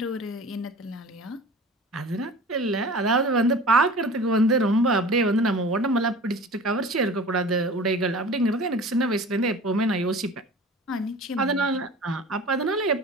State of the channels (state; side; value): normal; both; correlation 0.40